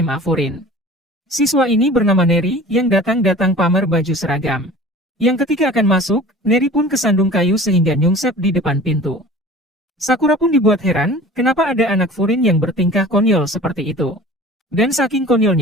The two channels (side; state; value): both; normal; correlation 0.42